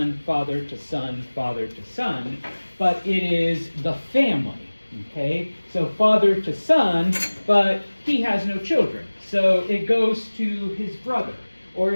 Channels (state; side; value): inverted; both; correlation -1.00